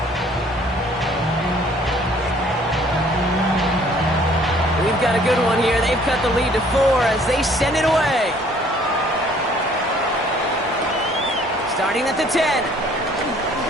We've got a good one here. They've cut the lead to 4 as they send it away. Starting at the 10.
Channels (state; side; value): normal; both; correlation 0.58